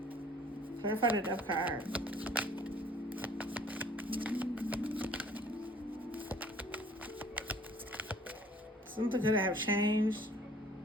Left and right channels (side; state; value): both; normal; correlation 0.54